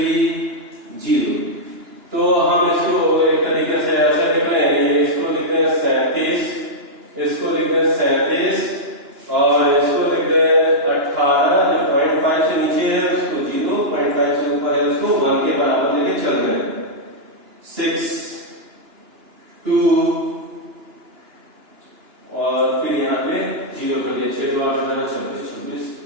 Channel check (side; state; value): left; late; 2.9 ms